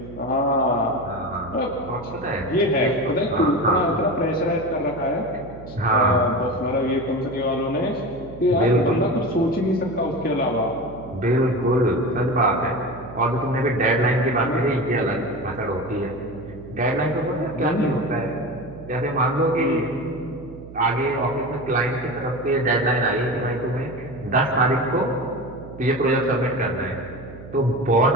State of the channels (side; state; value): right; noise; hum, 15 dB below the sound